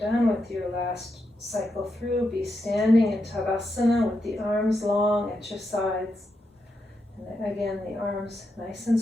done with your last cycle through, be standing in Tadasana with the arms long at your sides. And again, the arms nice and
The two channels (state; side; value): normal; both; correlation 0.84